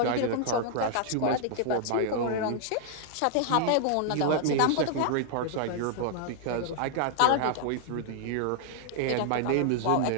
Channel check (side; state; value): both; different; correlation -0.01